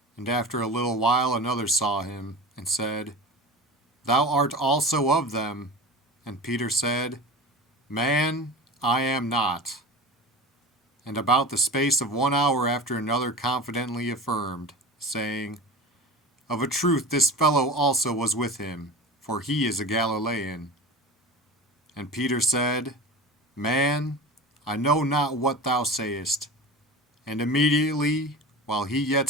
And after a little while another saw him, and said, Thou art also of them. And Peter said, Man, I am not. And about the space of 1 hour after another confidently affirmed, saying, Of a truth this fellow also was with him, for he is a Galilean. And Peter said, Man, I know not what thou sayest. And immediately, while he yet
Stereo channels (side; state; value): both; normal; correlation 0.33